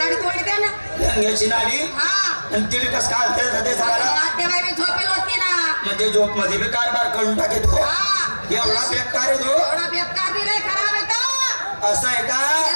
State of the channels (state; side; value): inverted; both; correlation -1.00